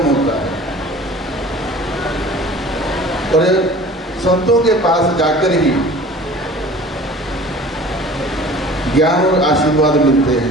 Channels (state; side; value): normal; both; correlation 0.44